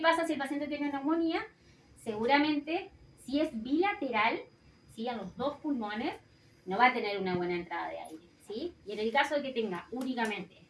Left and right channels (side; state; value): both; identical; correlation 1.00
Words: si el paciente tiene neumonía? Seguramente, si es bilateral, ¿sí? A los dos pulmones, no va a tener una buena entrada de aire, ¿sí? Y en el caso de que tenga únicamente